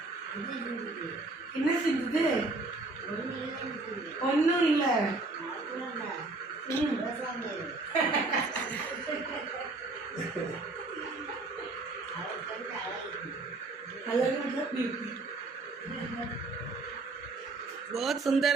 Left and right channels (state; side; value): quieter; left; 3.3 dB